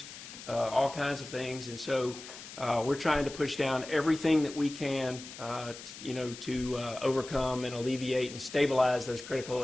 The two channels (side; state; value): left; noise; hiss, 13 dB below the sound